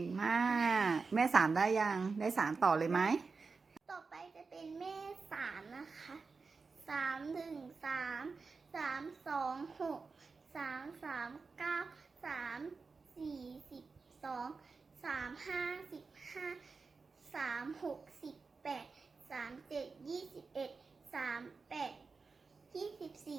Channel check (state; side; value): quieter; left; 4.5 dB